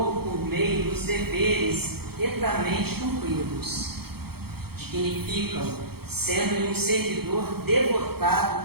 por meio dos deveres retamente cumpridos, dignifica-o, sendo-lhe um servidor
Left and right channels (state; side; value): late; left; 0.96 ms